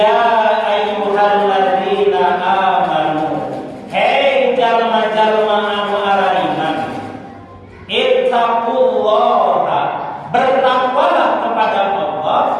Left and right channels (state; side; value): identical; both; correlation 1.00